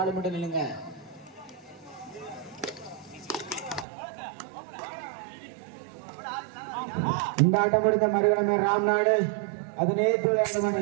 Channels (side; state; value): left; drops out; at 3.9 s